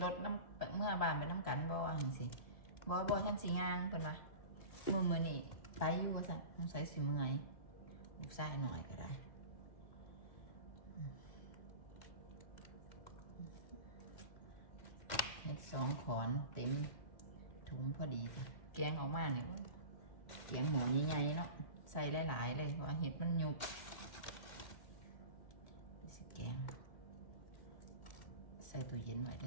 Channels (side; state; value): right; late; 2.1 ms